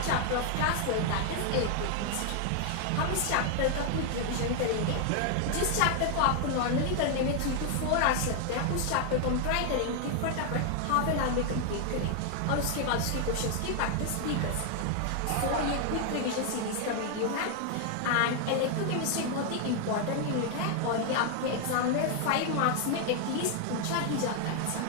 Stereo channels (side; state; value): both; different; correlation 0.00